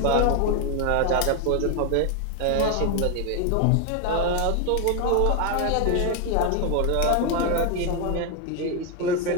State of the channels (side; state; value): both; different; correlation 0.01